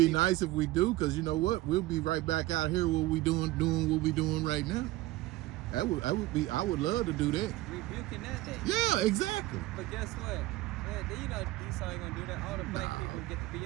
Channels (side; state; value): left; quieter; 17.9 dB